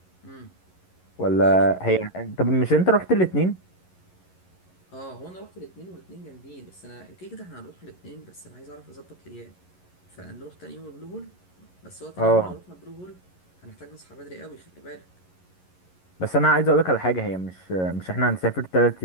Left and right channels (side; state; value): right; late; 11 ms